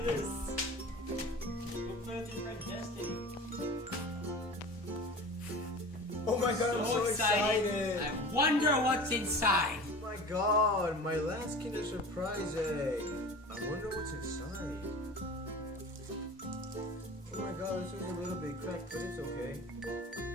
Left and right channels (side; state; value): both; normal; correlation 0.37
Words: this. We'll play with your friend Destiny. Oh my god, I'm so excited. I wonder what's inside. Oh my god, my last Kinder Surprise egg. I wonder what's inside. Oh my god, this is a little bit cracked, but it's okay.